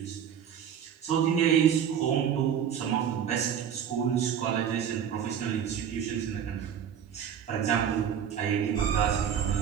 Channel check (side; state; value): left; quieter; 8.5 dB